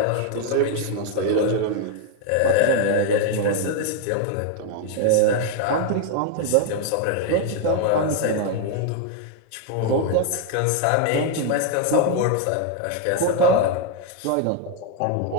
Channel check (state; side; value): different; both; correlation 0.00